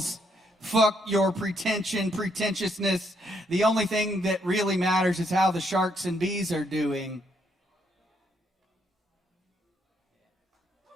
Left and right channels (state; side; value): normal; both; correlation 0.73